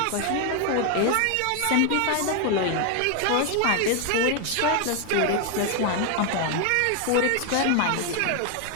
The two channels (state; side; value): different; both; correlation 0.01